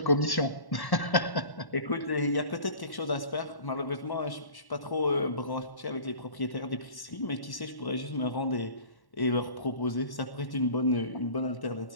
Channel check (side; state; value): right; late; 1.1 ms